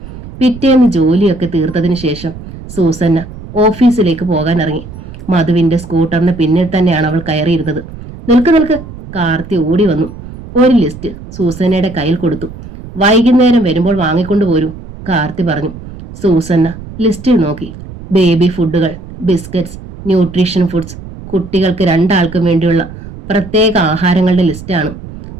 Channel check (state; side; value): noise; right; rumble, 14 dB below the sound